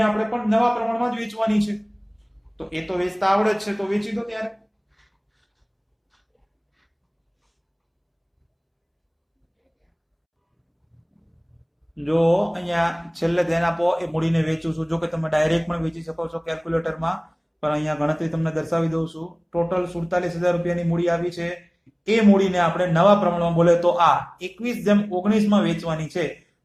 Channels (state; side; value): identical; both; correlation 1.00